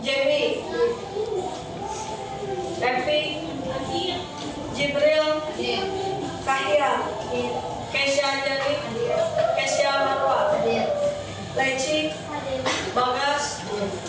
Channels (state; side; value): identical; both; correlation 1.00